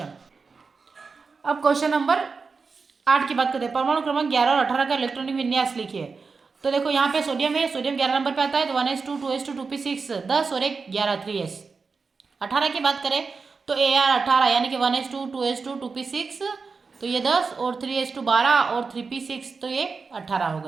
अब क्वेश्चन नंबर 8 की बात करते हैं। परमाणु क्रमांक 11 और 18 का इलेक्ट्रॉनिक विन्यास लिखिए। तो देखो यहाँ पे सोडियम है, सोडियम 11 नंबर पे आता है, तो 1s2 2s2 2p6 10 और 1 11 3s। 18 की बात करें तो AR 18 यानी कि 1s2 2s2 2p6, तो ये 10 और 3s2 12 और 3p6, तो ये 18 हो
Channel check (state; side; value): quieter; left; 4.7 dB